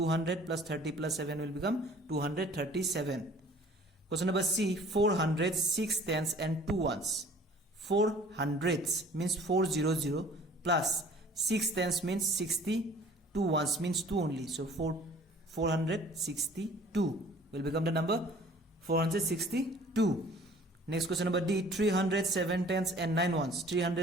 plus 30 plus 7 will become 237. Question number C, 400, 6 tens and 2 ones. 4 hundreds means 400 plus 6 tens means 60. 2 ones means 2 only. So 462 will become the number 462. Next question number D, 300, 7 tens and 9 ones.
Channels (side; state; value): both; normal; correlation 0.51